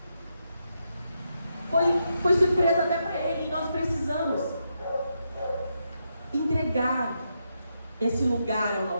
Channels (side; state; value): both; inverted; correlation -0.82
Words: Foi surpresa até para ele, e nós precisamos entregar esse lugar ao